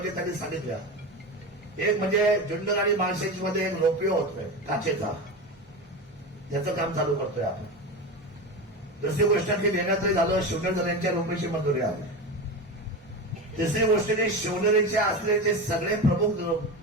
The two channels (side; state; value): both; normal; correlation 0.23